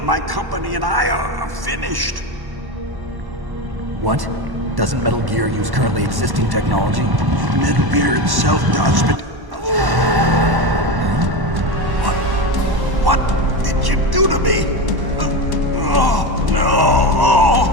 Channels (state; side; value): late; left; 1.1 ms